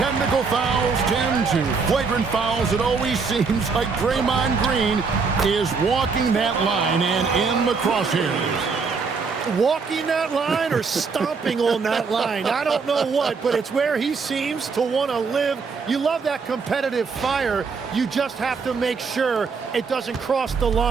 fouls, 10 to flagrant fouls, it always seems like Draymond Green is walking that line and in the crosshairs. Walking that line or stomping on that line. I don't know what, but it's where he seems to want to live. You love that competitive fire. You just have to make sure it doesn't cross the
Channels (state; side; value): quieter; left; 5.0 dB